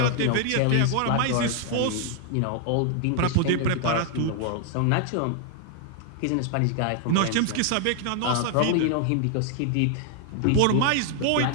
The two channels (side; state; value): both; different; correlation 0.00